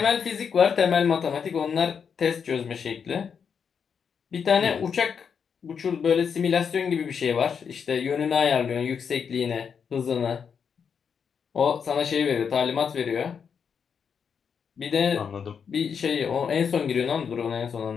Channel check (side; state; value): right; quieter; 6.8 dB